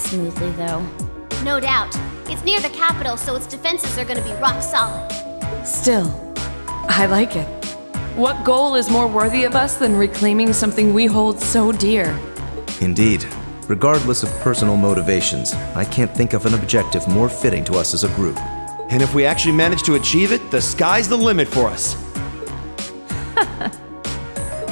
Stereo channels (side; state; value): both; inverted; correlation -1.00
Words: though. No doubt. It's near the capital, so its defenses are gonna be rock solid. Still, I like it. What goal is more worthy of us than reclaiming something we hold so dear? Indeed. Regardless of personal motivations, I can't think of an objective more fitting to us as a group. And if we actually manage to achieve it, the sky's the limit for us.